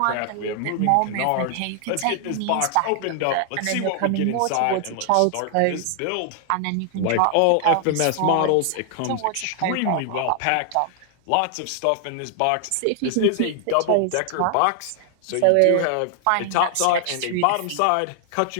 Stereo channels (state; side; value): different; both; correlation 0.00